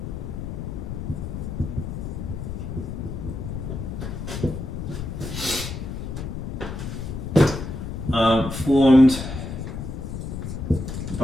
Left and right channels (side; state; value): left; noise; rumble, 6 dB below the sound